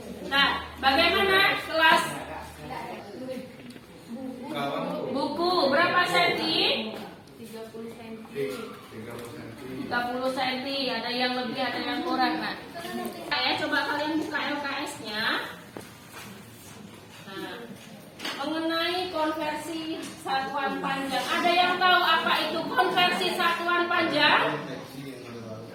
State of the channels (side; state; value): both; identical; correlation 1.00